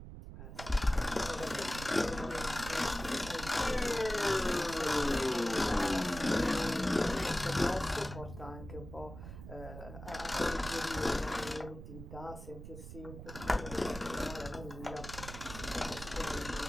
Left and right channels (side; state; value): right; noise; rumble, 11 dB below the sound